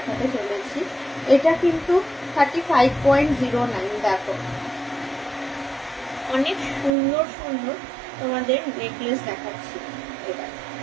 চলেছি। এটা কিন্তু 35.09। দেখো অনেক সুন্দর সুন্দর তোমাদের নেকলেস দেখাচ্ছি। এটা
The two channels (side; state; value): left; drops out; at 6.9 s